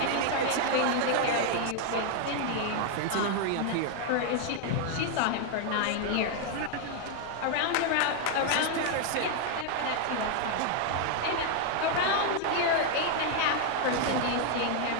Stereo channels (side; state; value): both; different; correlation 0.00